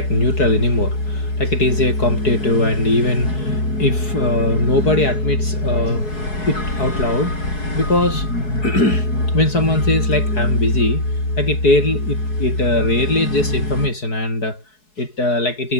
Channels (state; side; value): late; right; 4.7 ms